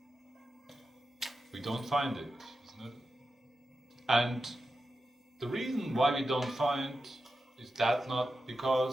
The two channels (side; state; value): both; normal; correlation 0.90